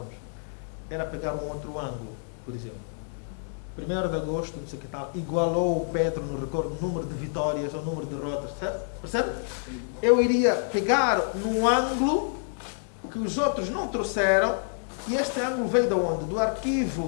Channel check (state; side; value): silent; right; digital silence